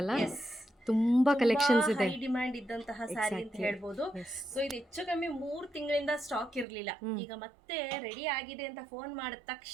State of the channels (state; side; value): drops out; left; at 6.7 s